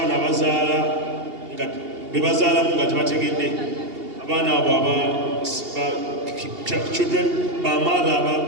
abazaala nga be bazaalamu nga tebategedde abaana abo children ba mother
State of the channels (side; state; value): left; late; 2.8 ms